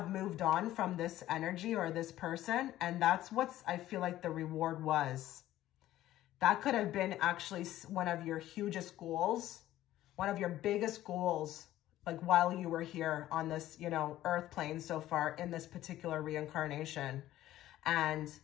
moved on from this energy or this person, and that's what's, I feel like the reward was. That could have been actually one of your hugest goals. One of your biggest goals, like while you were here on this, you know, earth plane so far in this particular reincarnation. And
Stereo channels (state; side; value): quieter; right; 14.1 dB